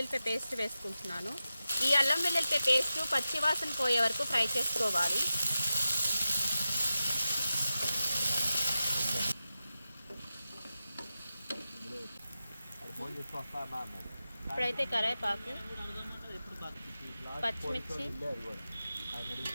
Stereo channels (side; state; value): both; inverted; correlation -0.92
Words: పేస్ట్ వేసుకుంటున్నాను. ఈ అల్లం వెల్లుల్లిపాయ పేస్ట్ పచ్చివాసన పోయే వరకు ఫ్రై చేసుకోవాలి. ఇప్పుడైతే కరివేపాకు, పచ్చిమిర్చి,